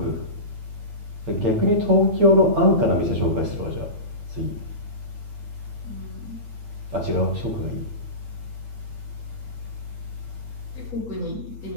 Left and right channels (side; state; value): left; late; 8.7 ms